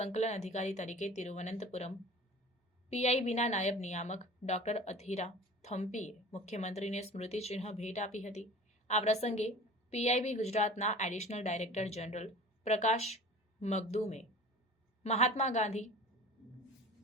અધિકારી તરીકે તિરુવનંતપુરમ પીઆઈબીના નાયબ નિયામક ડોક્ટર અથીરા થમ્પીએ મુખ્યમંત્રીને સ્મૃતિચિહ્ન ભેટ આપી હતી। આ પ્રસંગે પીઆઈબી ગુજરાતના એડિશનલ ડાયરેક્ટર જનરલ પ્રકાશ મગદુમે મહાત્મા ગાંધી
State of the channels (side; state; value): both; normal; correlation 0.40